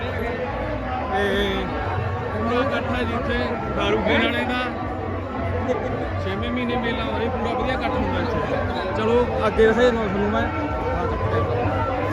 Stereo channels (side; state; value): both; identical; correlation 1.00